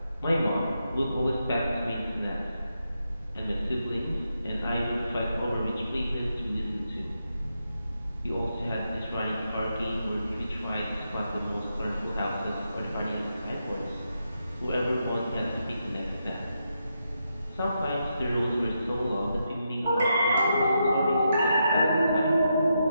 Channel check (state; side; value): inverted; both; correlation -0.84